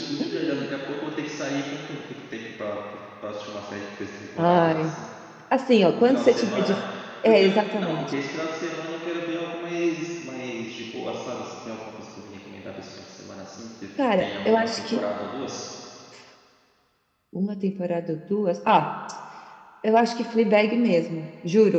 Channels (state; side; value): identical; both; correlation 1.00